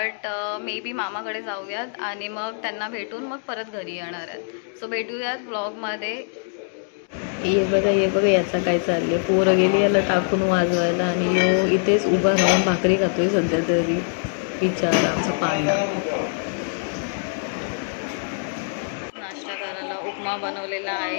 मे बी मामाकडे जाऊयात आणि मग त्यांना भेटून मग परत घरी येणार आहेत. सो भेटूयात ब्लॉगमध्ये. ये बघा याचा काय चाललंय. पोरं गेली याला टाकून वाजवायला आणि यो इथेच उभा राहून भाकरी खातोय सध्या तरी. बिचारा आमचा पांडा. नाश्ता करायला उपमा बनवलेला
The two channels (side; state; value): right; silent; 63 dB below the other